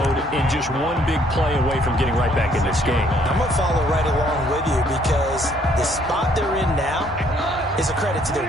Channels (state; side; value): normal; both; correlation 0.65